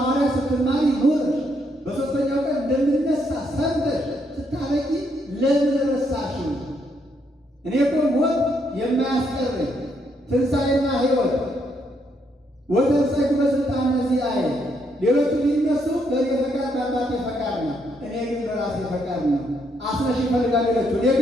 ስትማሪ ኖረሽ በሦስተኛው ቀን እንደምነሳ ሰምተሽ ስታበቂ ለምን ረሳሽው? እኔ እኮ ሞት የማያስቀረኝ ትንሣኤና ሕይወት ወተንሣኤኩ በሥልጣነ ዚአየ፣ ሌሎቹ ሊነሱ በእኔ ፈቃድ በአባቴ ፈቃድ ነው፣ እኔ ግን በራሴ ፈቃድ ነው። አስነሽ ይፈልጋል ሌሎቹ፣ እኔ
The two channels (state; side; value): normal; both; correlation 0.74